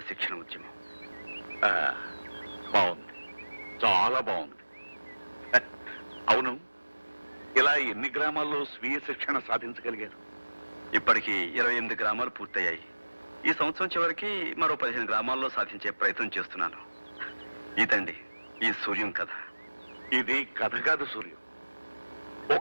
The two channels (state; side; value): inverted; both; correlation -1.00